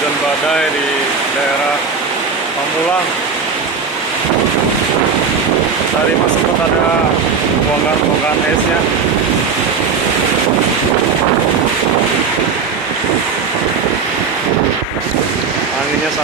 hujan badai di daerah Pamulang. Tadi masih sempat ada bongkahan esnya. Anginnya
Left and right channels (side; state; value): left; quieter; 5.5 dB